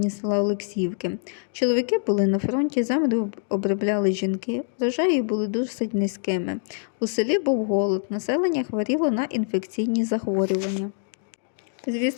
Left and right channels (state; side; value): silent; right; digital silence